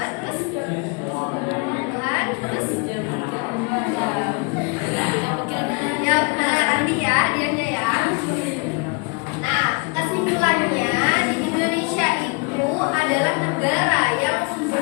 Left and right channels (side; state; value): right; quieter; 31.7 dB